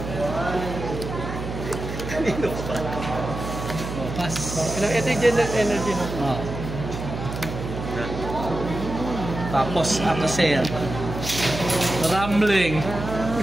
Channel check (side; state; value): right; noise; hum, 7 dB below the sound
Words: Kanino pa? Oh, pas. Ito yung general energy no? Oh. Tapos, after sale. Rambling.